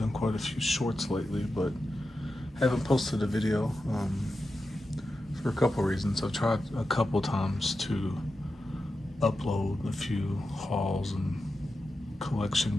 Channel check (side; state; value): both; normal; correlation 0.90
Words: quite a few shorts lately, but haven't posted a video for a couple reasons. I've tried a couple times to upload a few hauls and collection